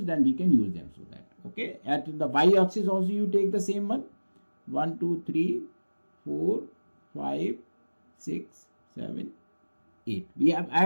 then we can use them. So that, okay, at the y axis also you take the same one. 1, 2, 3, 4, 5, 6, 7, 8. I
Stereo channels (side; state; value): both; inverted; correlation -1.00